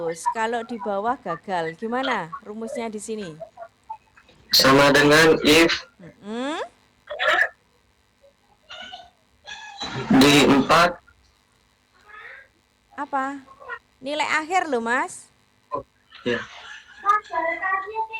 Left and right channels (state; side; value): identical; both; correlation 1.00